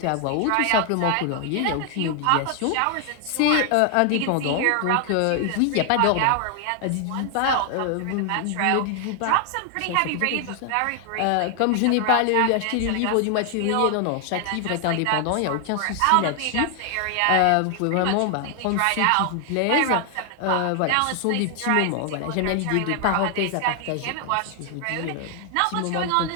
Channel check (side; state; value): both; different; correlation 0.00